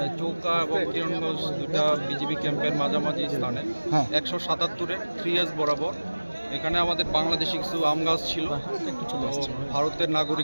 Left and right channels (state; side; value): inverted; both; correlation -1.00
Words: চৌকা এবং কিরণগঞ্জ দুটা বিজিবি ক্যাম্পের মাঝামাঝি স্থানে 177-এর 3S বরাবর এখানে আমাদের বাংলাদেশি কিছু আম গাছ ছিল। ভারতের